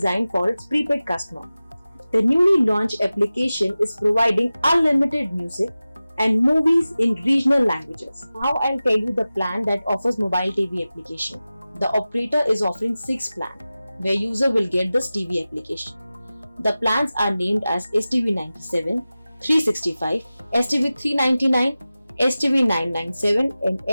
for its prepaid customer. The newly launched application is providing unlimited music and movies in regional languages. Now I'll tell you the plan that offers mobile TV application. The operator is offering 6 plans where user will get this TV application. The plans are named as STV 97, 365, STV 399, STV 997 and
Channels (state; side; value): inverted; both; correlation -0.96